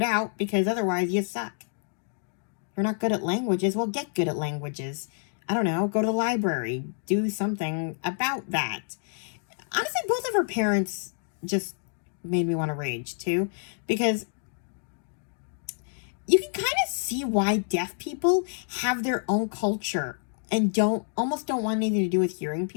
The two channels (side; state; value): right; silent; digital silence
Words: out, because otherwise you suck. You're not good at languages, well, get good at languages. I don't know, go to the library, do something about that. Honestly, both of her parents just made me want to rage, too, because you can kind of see why deaf people have their own culture and almost don't want anything to do with hearing